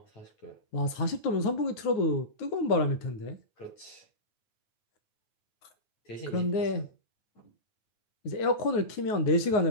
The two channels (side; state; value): right; late; 9.5 ms